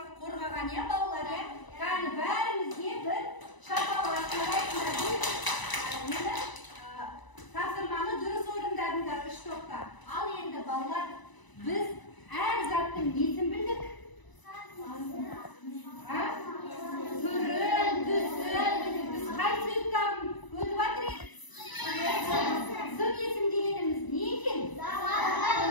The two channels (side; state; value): right; late; 1.0 ms